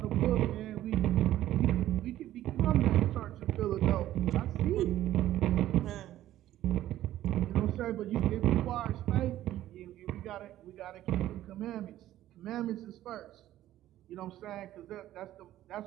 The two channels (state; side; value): quieter; left; 13.6 dB